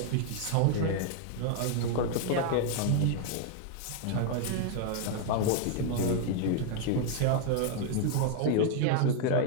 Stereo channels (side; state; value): both; different; correlation 0.00